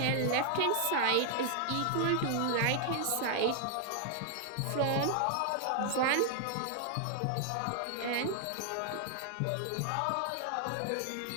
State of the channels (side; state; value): both; different; correlation 0.00